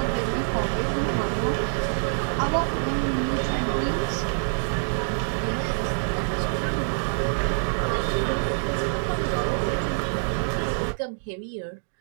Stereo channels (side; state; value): left; silent; digital silence